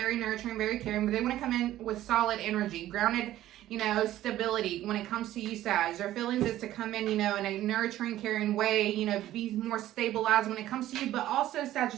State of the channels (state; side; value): quieter; left; 13.9 dB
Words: nurturing, very caring, but they want to come in with solid energy, grounded, you know, stability when it comes to you, Sag. Their feelings is to come in, you know, in a nurturing, caring way, you know, be more stabilized when it comes to you, but also,